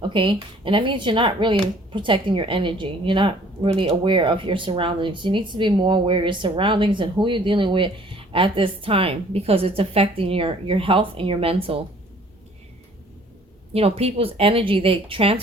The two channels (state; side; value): normal; both; correlation 0.56